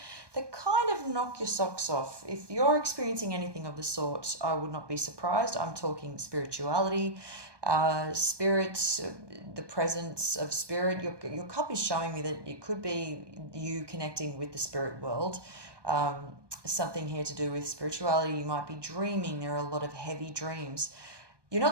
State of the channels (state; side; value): late; left; 1.2 ms